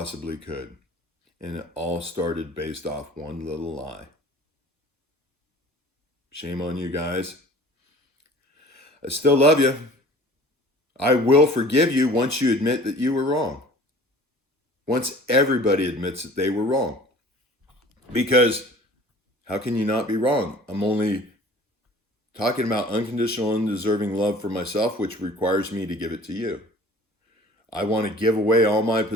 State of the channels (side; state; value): both; normal; correlation 0.47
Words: could. And it all started based off one little lie. Shame on you guys. I still love you. I will forgive you once you admit that you were wrong. Once everybody admits that they were wrong. Because how can you not be wrong? I'm only talking about unconditional, undeserving love for myself, which requires me to give it to you. I want to give away all my